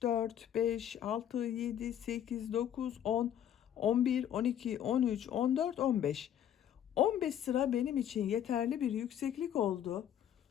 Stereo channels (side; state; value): right; quieter; 10.1 dB